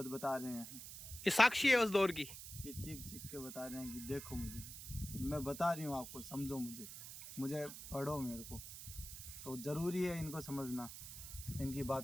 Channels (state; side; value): noise; right; hiss, 11 dB below the sound